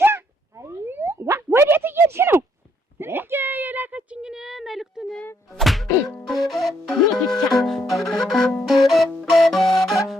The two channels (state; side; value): normal; both; correlation 0.72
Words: ወዴት እየሄድሽ ነው? እንዴ የላከችኝን መልእክቱን ብቻ